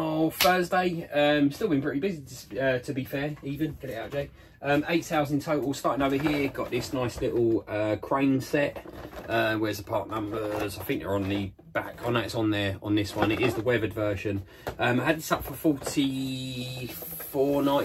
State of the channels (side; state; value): both; identical; correlation 1.00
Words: Thursday. Still been pretty busy to be fair, even. Get it out, Jay. 8 sales in total. Starting over here, got this nice little crane set. Where's the part numbers? I think they're on the back. Oh no, it's on there on this one. It is the weathered version. I had this up for